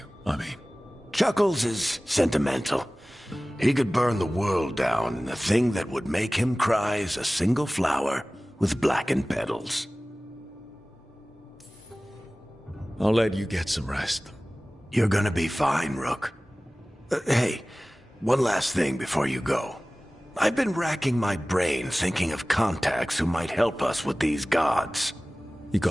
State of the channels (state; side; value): normal; both; correlation 0.98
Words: I mean. Chuckles is sentimental. He could burn the world down, and the thing that would make him cry is a single flower with blackened petals. I'll let you get some rest. You're gonna be fine, Rook. Hey, one last thing before you go. I've been racking my brain thinking of contacts who might help us with these gods. You